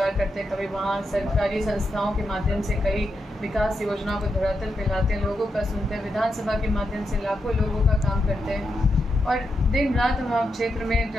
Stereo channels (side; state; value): both; normal; correlation 0.85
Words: करते हैं, कभी वहाँ सरकारी संस्थाओं के माध्यम से कई विकास योजनाओं को धरातल पे लाते हैं, लोगों का सुनते हैं, विधानसभा के माध्यम से लाखों लोगों का काम करते हैं। और दिन रात हम क्षेत्र में